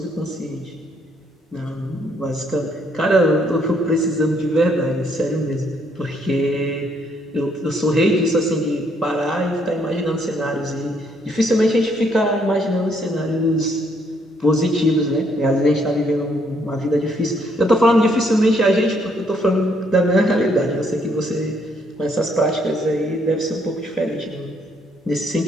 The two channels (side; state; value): both; normal; correlation 0.70